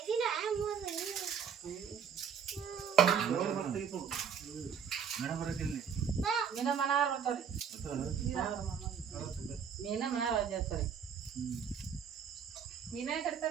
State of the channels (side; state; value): left; quieter; 7.4 dB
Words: ಮೀನ ಮನಾರ್ ಬರ್ತಾವ್ರಿ ಮೀನ ಮನಾರ್ ಮೀನೇ